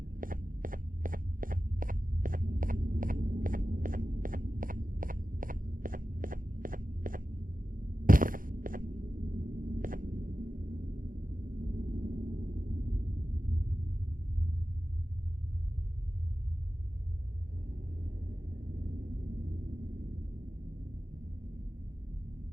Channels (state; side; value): late; left; 0.40 ms